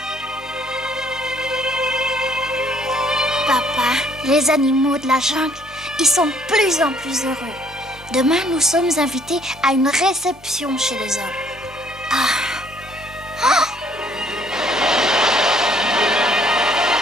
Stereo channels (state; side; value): normal; both; correlation 0.63